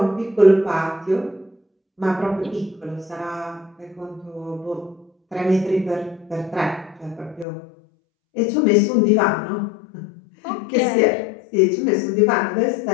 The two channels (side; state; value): right; drops out; at 7.5 s